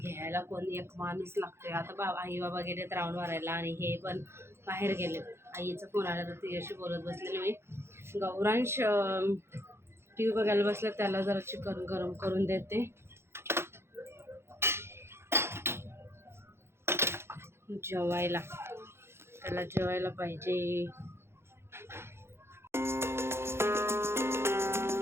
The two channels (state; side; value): late; left; 0.12 ms